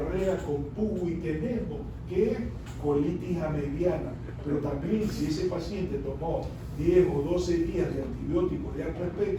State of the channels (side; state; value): both; identical; correlation 1.00